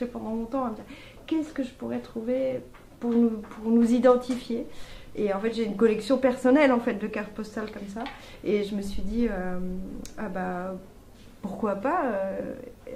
pendant longtemps à me dire qu'est-ce que je pourrais trouver pour nous identifier. Et en fait, j'ai une collection personnelle en fait de cartes postales comme ça. Et je me suis dit, pourquoi pas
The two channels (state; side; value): identical; both; correlation 1.00